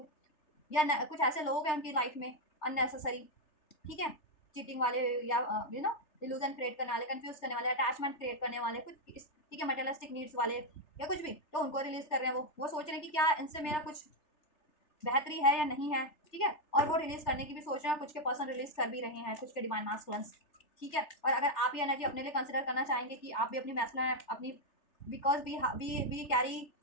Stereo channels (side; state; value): right; late; 3.4 ms